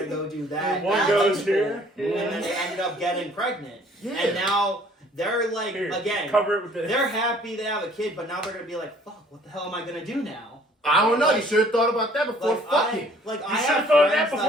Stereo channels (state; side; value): normal; both; correlation 0.57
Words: go do that. One That's goes cool. here. And then they ended up getting pregnant. Yeah. And now they're like, Here, again, cover it with this. they're happy they have a kid, but now they're gonna be like, fuck, what the hell am I gonna do now? I don't know. You should have thought about that before Like, fucking. I You have should've thought of that friends